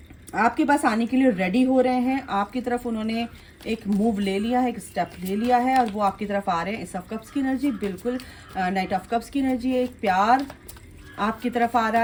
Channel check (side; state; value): both; identical; correlation 1.00